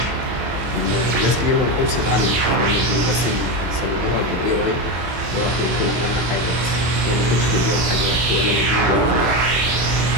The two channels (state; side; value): late; left; 24 ms